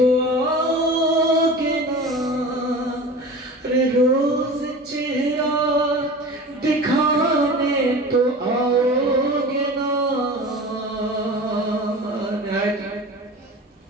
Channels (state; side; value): normal; both; correlation 0.35